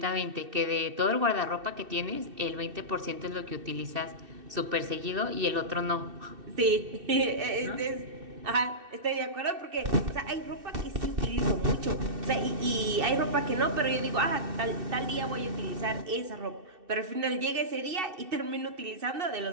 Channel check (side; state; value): left; late; 2.6 ms